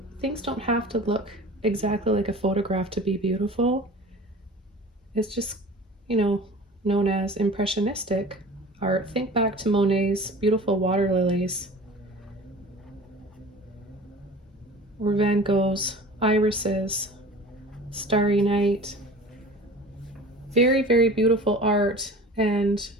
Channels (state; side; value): normal; both; correlation 0.40